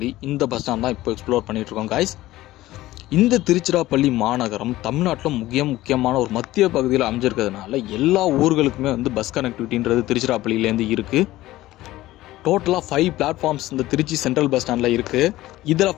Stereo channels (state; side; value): quieter; right; 16.4 dB